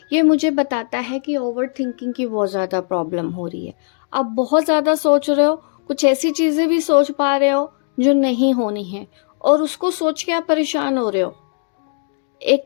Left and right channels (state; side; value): silent; right; digital silence